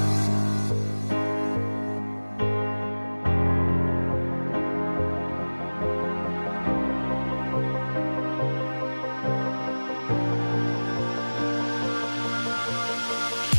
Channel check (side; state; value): both; inverted; correlation -1.00